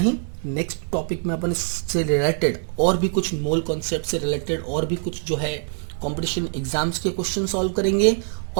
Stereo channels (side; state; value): left; silent; digital silence